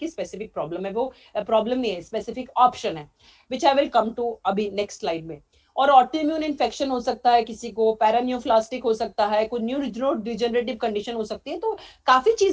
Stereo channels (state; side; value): identical; both; correlation 1.00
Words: स्पेसिफिक प्रॉब्लम है, वो प्रॉब्लम नहीं है, स्पेसिफिक ऑप्शन है, विच आई विल कम टू अभी नेक्स्ट स्लाइड में। और ऑटोइम्यून इन्फेक्शन हो सकता है, किसी को पैरानियोप्लास्टिक हो सकता है, कोई न्यूरो डिजेनरेटिव कंडीशन हो सकती है। तो काफी